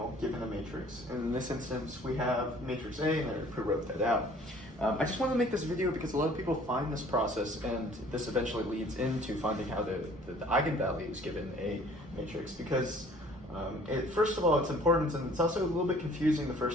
given a matrix. And in this instance we have matrix A and I pre-wrote that out. I just want to make this video because a lot of people find this process and this eventually leads into finding how the eigenvalues given a matrix because first of all it's important and it's also a little bit confusing the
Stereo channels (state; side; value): normal; both; correlation 0.53